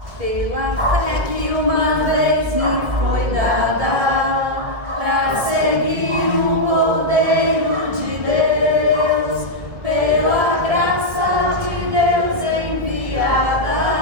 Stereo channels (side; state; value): left; late; 1.7 ms